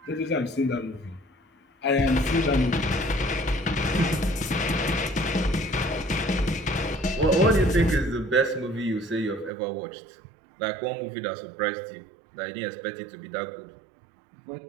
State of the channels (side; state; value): left; drops out; at 9.5 s